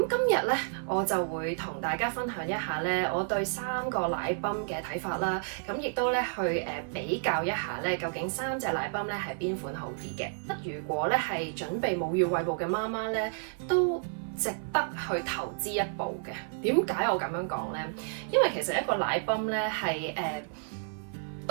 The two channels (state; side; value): silent; left; 57 dB below the other